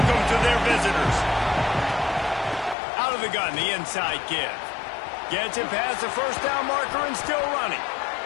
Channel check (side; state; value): right; drops out; at 2.8 s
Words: to their visitors. Out of the gun, the inside give. Gets it past the first down marker and still running.